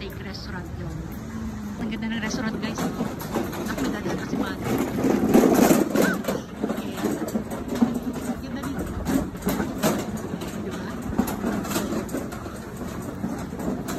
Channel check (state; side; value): identical; both; correlation 1.00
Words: restaurant yun. Ang ganda ng restaurant, guys. Ako nadadala kasi mati.